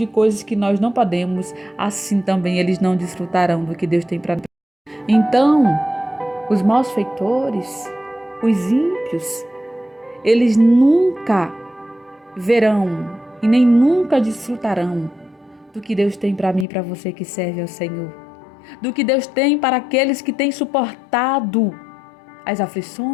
coisas que nós não podemos, assim também eles não desfrutarão do que Deus tem para nós. Então, os malfeitores, os ímpios, eles nunca verão e nem nunca desfrutarão do que Deus tem para mim e para você que serve ao Senhor. Do que Deus tem para aqueles que têm suportado as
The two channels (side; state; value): right; drops out; at 16.7 s